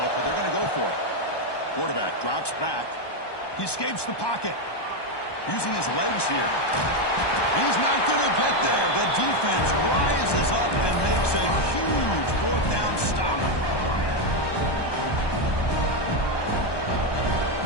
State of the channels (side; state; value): right; late; 1.2 ms